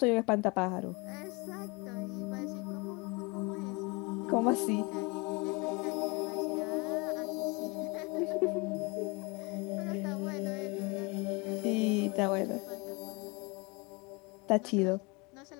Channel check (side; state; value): right; quieter; 28.0 dB